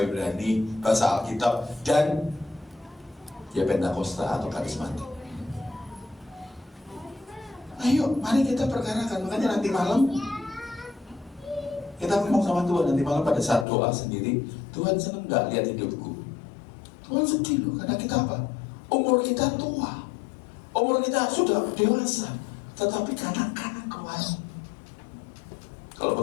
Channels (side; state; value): right; drops out; at 13.7 s